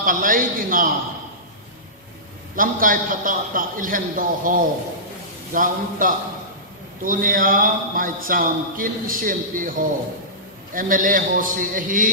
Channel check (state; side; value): normal; both; correlation -0.19